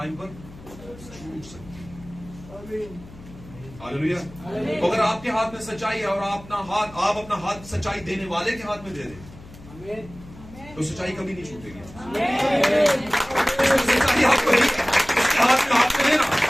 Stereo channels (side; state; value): left; noise; hum, 19 dB below the sound